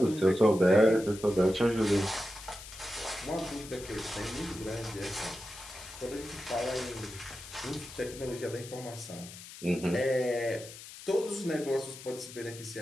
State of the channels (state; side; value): noise; left; hiss, 14 dB below the sound